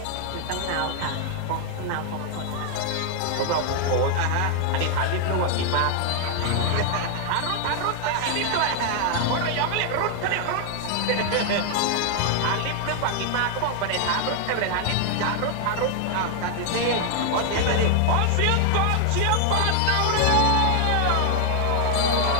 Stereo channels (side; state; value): both; different; correlation 0.00